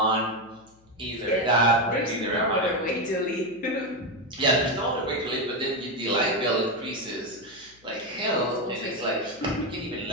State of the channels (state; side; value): noise; left; hum, 30 dB below the sound